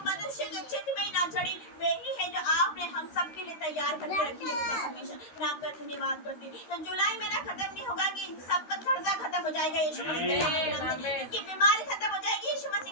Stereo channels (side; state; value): right; late; 13 ms